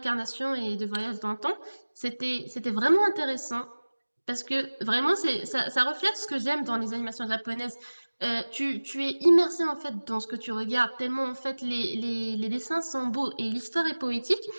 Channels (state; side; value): inverted; both; correlation -1.00